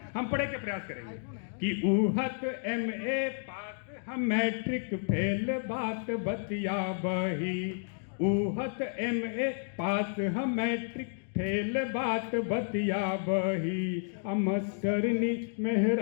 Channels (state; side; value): silent; right; digital silence